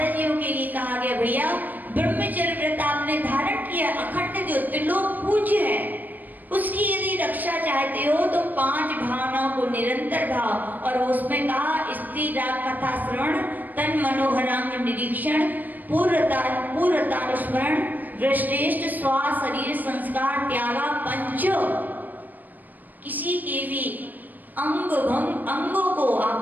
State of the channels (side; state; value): left; late; 0.086 ms